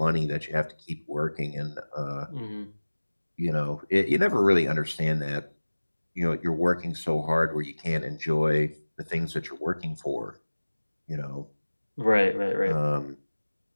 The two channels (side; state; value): both; inverted; correlation -1.00